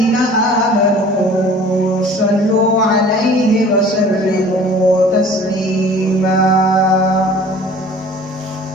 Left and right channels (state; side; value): normal; both; correlation 0.47